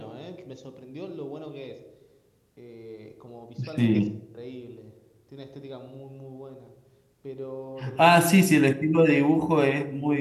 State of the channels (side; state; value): both; identical; correlation 1.00